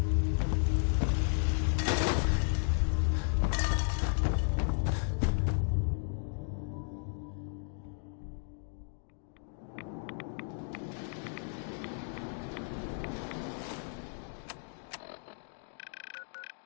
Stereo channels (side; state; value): right; silent; 55 dB below the other